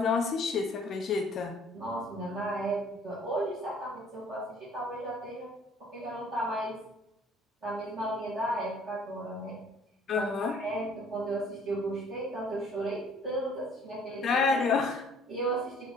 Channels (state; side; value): normal; both; correlation 0.56